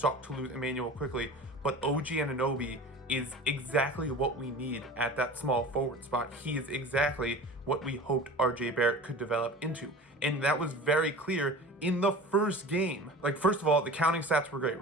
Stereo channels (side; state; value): both; normal; correlation 0.37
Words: to lose Emmanuel quickly, but OG Anunoby is exactly what we need at that small forward spot. He is exactly what we hoped RJ Barrett could develop into. And that was very clear in the first game. First of all, the counting stats were great,